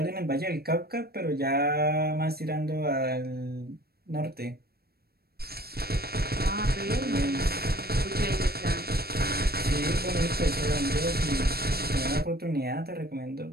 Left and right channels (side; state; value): left; late; 0.45 ms